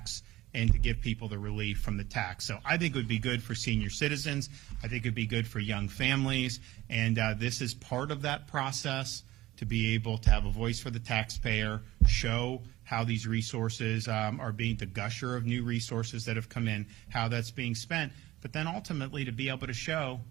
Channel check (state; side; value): quieter; left; 16.9 dB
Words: and to give people the relief from the tax. So I think it would be good for senior citizens. I think it would be good for young families. And this is part of that process, to be able to have a voice for the taxpayer, show how these resources are being, the gusher of new resources that have come in, how that's being spent, but then ultimately to be able to show